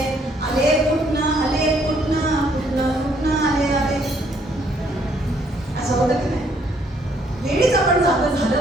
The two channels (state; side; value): normal; both; correlation 0.67